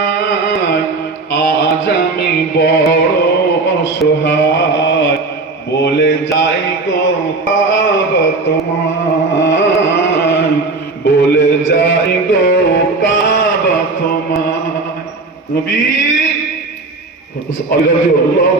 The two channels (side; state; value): left; quieter; 3.6 dB